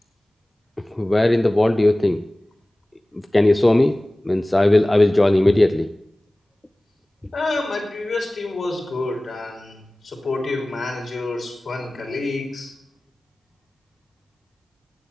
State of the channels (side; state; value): both; normal; correlation 0.98